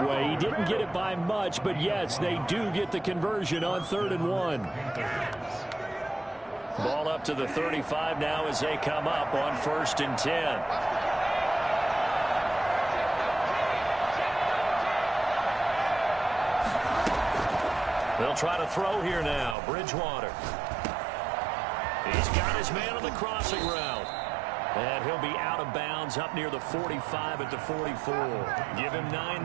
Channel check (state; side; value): drops out; left; at 19.6 s